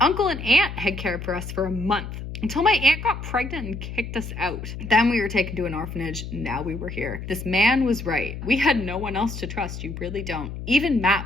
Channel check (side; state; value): left; noise; hum, 8 dB below the sound